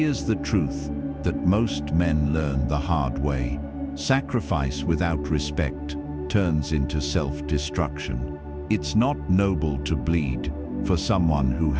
the truth that most men learn the hard way. Sacrifice without respect turns into self-destruction. It's not noble to bleed for someone who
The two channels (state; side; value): identical; both; correlation 1.00